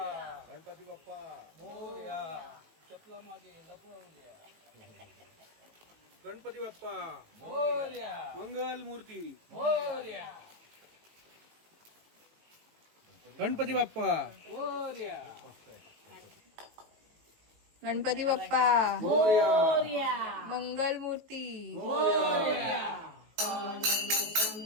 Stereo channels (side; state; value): left; late; 18 ms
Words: गणपती बाप्पा मोरया. चपला मागे लपवल्या. गणपती बाप्पा मोरया. मंगल मूर्ती मोरया. गणपती बाप्पा मोरया. गणपती बाप्पा मोरया. मंगलमूर्ती मोरया.